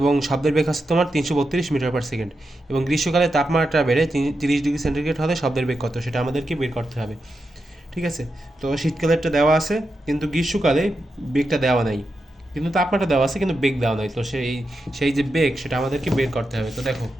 শব্দের বেগ হচ্ছে তোমার 332 মিটার/সেকেন্ড, এবং গ্রীষ্মকালে তাপমাত্রা বেড়ে 30 ডিগ্রি সেন্টিগ্রেড হলে শব্দের বেগ কত, সেটা আমাদেরকে বের করতে হবে। ঠিক আছে, তো শীতকালেরটা দেওয়া আছে, কিন্তু গ্রীষ্মকালে বেগটা দেওয়া নাই, কিন্তু তাপমাত্রা দেওয়া আছে কিন্তু বেগ দেওয়া নাই। তো সেই যে বেগ, সেটা আমাদেরকে বের করতে হবে। তো দেখো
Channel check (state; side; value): normal; both; correlation 0.87